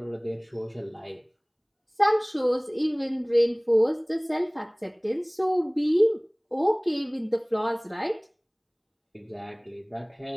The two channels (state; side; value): identical; both; correlation 1.00